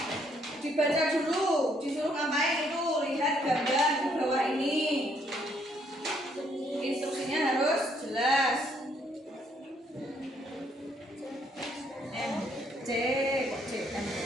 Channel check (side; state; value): both; normal; correlation 0.69